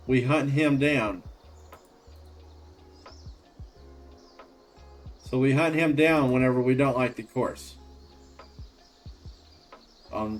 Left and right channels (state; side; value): identical; both; correlation 1.00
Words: him down. So we hunt him down whenever we don't like the course. On